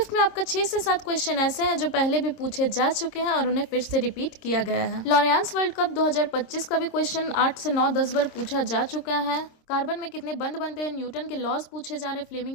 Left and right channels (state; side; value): late; right; 26 ms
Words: में आपका 6 से 7 क्वेश्चन ऐसे हैं जो पहले भी पूछे जा चुके हैं और उन्हें फिर से रिपीट किया गया है। लॉरियांस वर्ल्ड कप 2025 का भी क्वेश्चन 8 से 9-10 बार पूछा जा चुका है। कार्बन में कितने बंध बनते हैं, न्यूटन के लॉज पूछे जा रहे हैं,